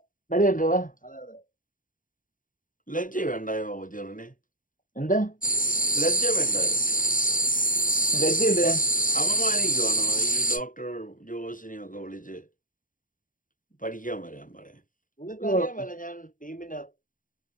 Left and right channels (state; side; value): late; right; 0.39 ms